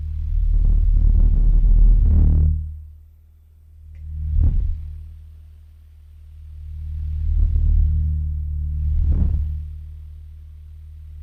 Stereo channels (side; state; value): both; identical; correlation 1.00